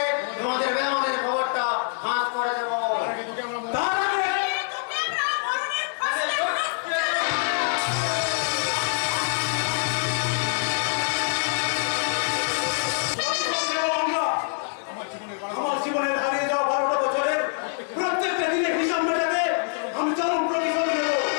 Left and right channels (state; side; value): silent; right; 62 dB below the other